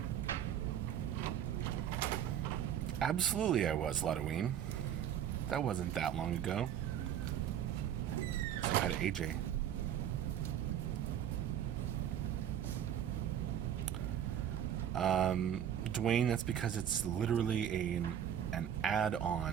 Absolutely I was, Ludoween. That wasn't that long ago. Say hi to AJ. Dwayne, that's because it's literally an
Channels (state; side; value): quieter; left; 9.8 dB